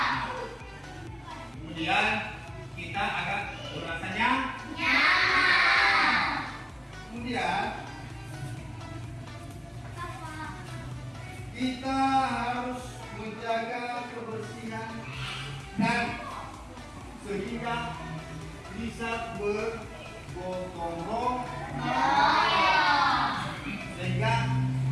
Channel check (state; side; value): identical; both; correlation 1.00